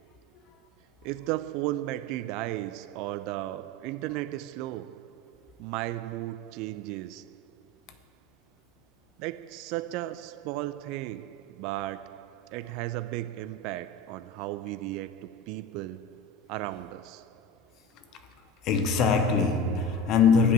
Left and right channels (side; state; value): both; normal; correlation 0.30